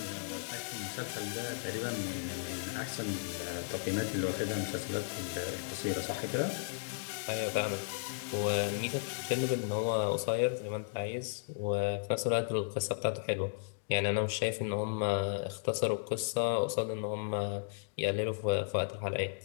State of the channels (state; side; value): silent; right; digital silence